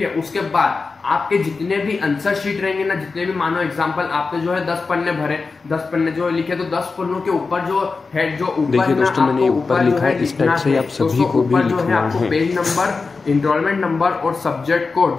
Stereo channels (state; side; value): quieter; right; 4.3 dB